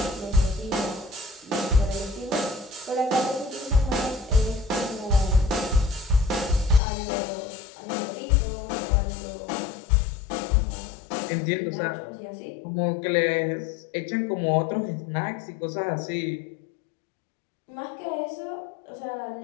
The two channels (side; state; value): right; drops out; at 6.8 s